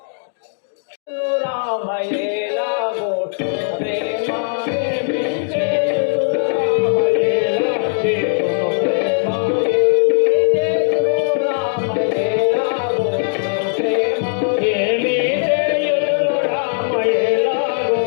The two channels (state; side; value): silent; right; 67 dB below the other